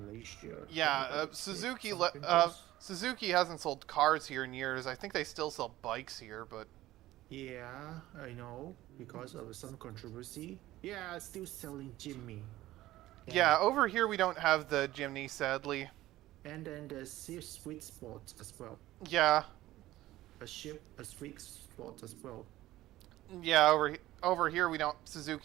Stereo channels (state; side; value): quieter; left; 15.9 dB